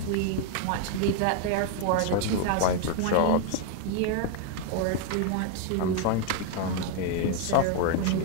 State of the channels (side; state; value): both; different; correlation 0.00